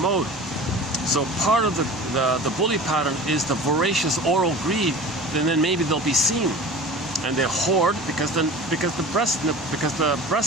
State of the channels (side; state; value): both; normal; correlation 0.38